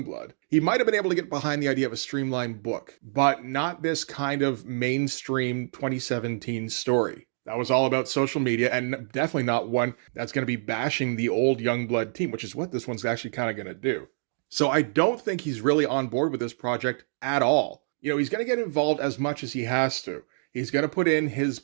He might have been able to get behind the idea of a streamlined book, but not this kind of mainstream 2017 story. That was all about social media, and definitely not one that's going to be bashing the old Youngblood team, which is what this one's actually kind of going to do. So I don't think he's really on board with this project at all. He's going to get involved as much as he has to. He's going to put in his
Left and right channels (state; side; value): silent; left; digital silence